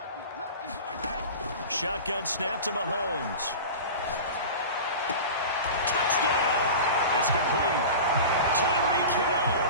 Shotgun snap to Mahomes. Touchdown! It's complete. Tyreek Hill,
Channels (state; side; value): inverted; both; correlation -0.32